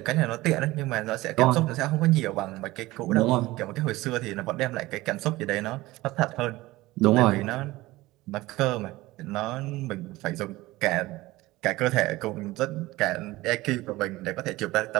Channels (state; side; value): quieter; left; 18.9 dB